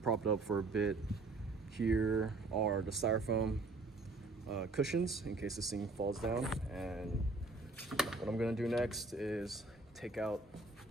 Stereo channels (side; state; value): left; quieter; 3.4 dB